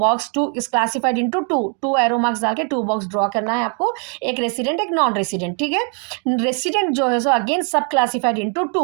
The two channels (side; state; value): left; quieter; 39.2 dB